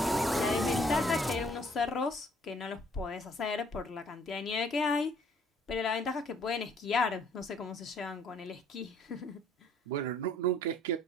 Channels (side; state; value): both; normal; correlation 0.61